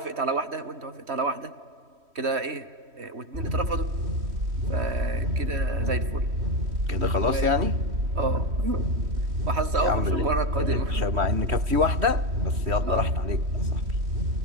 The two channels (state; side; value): late; left; 3.1 ms